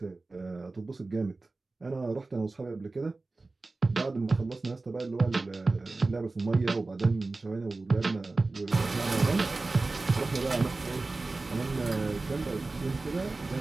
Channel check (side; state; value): left; quieter; 3.4 dB